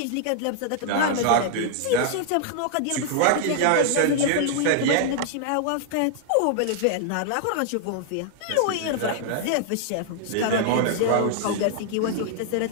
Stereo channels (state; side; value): different; both; correlation -0.01